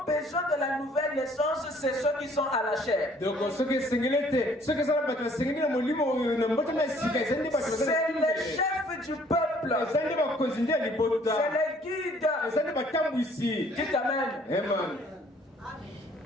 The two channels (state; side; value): normal; both; correlation 0.59